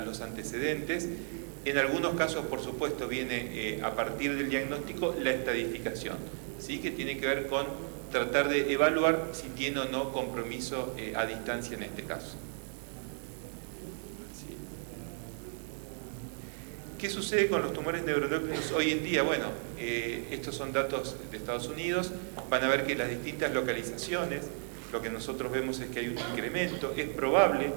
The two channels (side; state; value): left; silent; 55 dB below the other